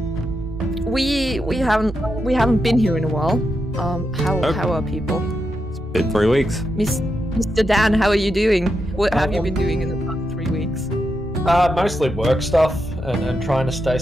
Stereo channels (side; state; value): both; normal; correlation 0.85